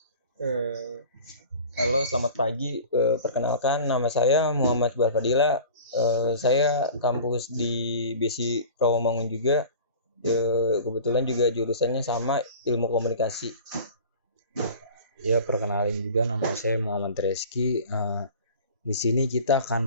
Halo, selamat pagi. Perkenalkan, nama saya Muhammad Barfadila. Saya kampus di BSI Rawamangun juga. Kebetulan juga jurusannya sama, Ilmu Komunikasi. Ya, perkenalin juga, nama saya Muhammad Reski. Di sini kita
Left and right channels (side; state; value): both; inverted; correlation -0.41